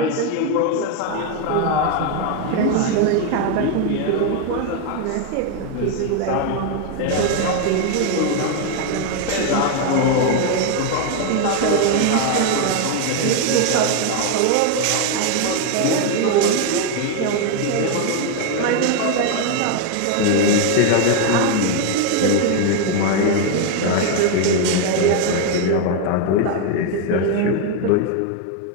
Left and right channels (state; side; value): different; both; correlation 0.01